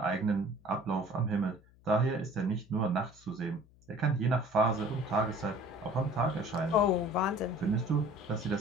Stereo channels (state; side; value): noise; left; hum, 27 dB below the sound